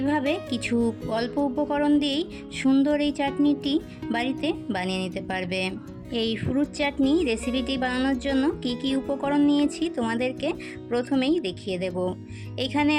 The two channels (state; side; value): identical; both; correlation 1.00